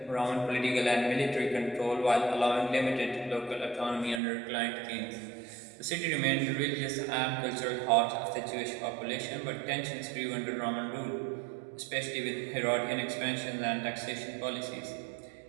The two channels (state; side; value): drops out; left; at 4.2 s